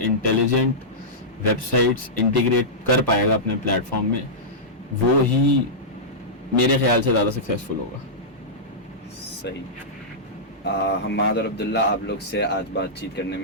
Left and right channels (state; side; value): normal; both; correlation -0.13